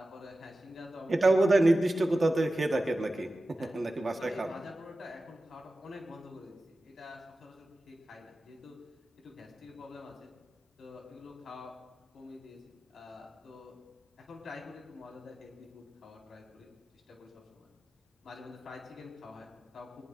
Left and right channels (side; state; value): both; normal; correlation 0.94